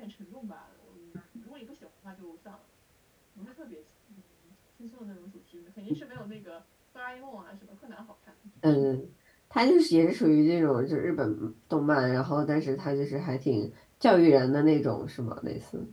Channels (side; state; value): both; identical; correlation 1.00